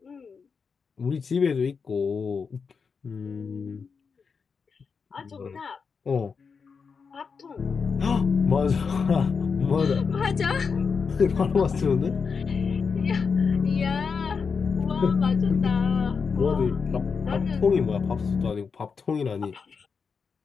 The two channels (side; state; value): right; quieter; 5.5 dB